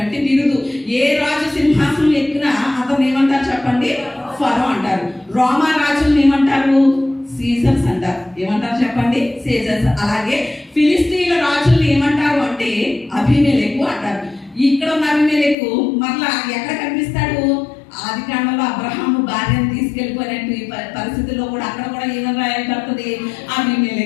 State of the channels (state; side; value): drops out; right; at 15.6 s